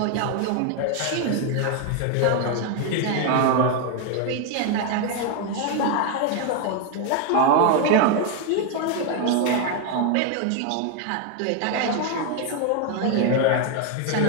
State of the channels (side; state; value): both; different; correlation 0.01